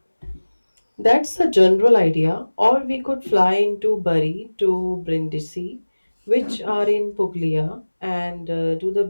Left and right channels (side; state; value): both; inverted; correlation -1.00